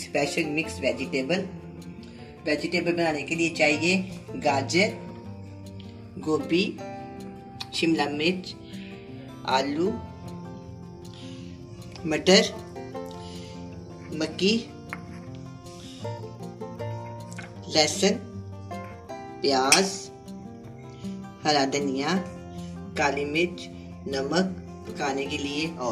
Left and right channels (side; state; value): both; identical; correlation 1.00